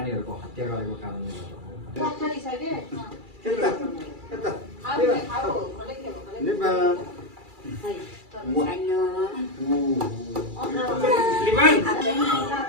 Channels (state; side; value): late; left; 2.3 ms